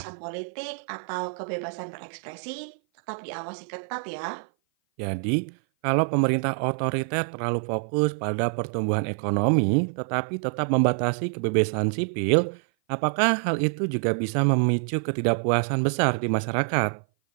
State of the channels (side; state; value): left; silent; 57 dB below the other